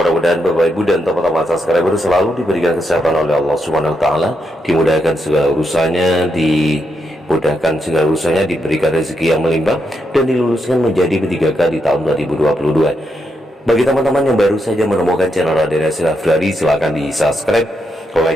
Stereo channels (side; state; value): both; normal; correlation 0.82